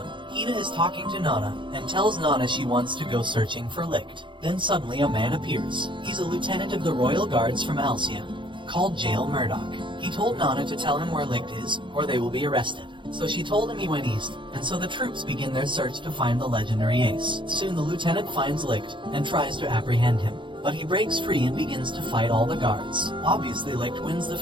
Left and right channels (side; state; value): left; late; 0.23 ms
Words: Hina is talking to Nana, and tells Nana she wants to go searching for Licht. Then suddenly a man appears. He's a lieutenant of the Royal Guards from Alcia, called Jail Murdoch. He told Nana to tell him where Licht is, or they will be arrested. So she told him he went east, and so the troops begin their search to find the legendary ace. Soon the lieutenant finds Licht, and tries to apprehend him, but he breaks free and begins to fight all the guards. Obviously Licht wins the